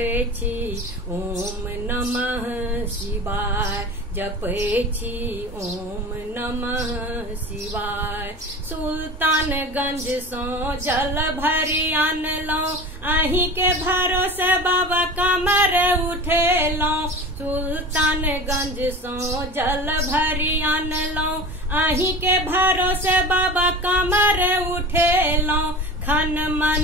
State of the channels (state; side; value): normal; both; correlation 0.34